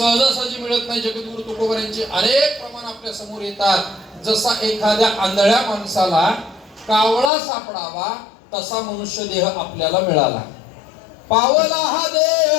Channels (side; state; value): right; drops out; at 7.3 s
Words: मिळत नाही. जगद्गुरु तुकोबारांचे अनेक प्रमाण आपल्या समोर येतात. जसा एखाद्या आंधळ्या माणसाला कावळा सापडावा तसा मनुष्य देह आपल्याला मिळाला. पावला हा